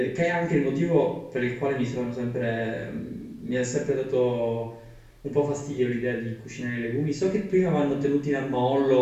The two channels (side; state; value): both; identical; correlation 1.00